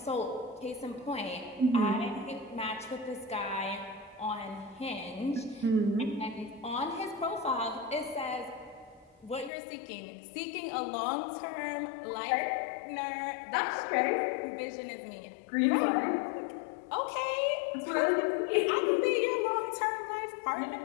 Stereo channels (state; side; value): drops out; right; at 9.5 s